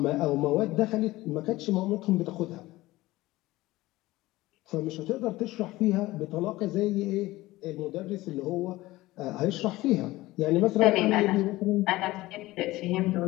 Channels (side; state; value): right; quieter; 18.4 dB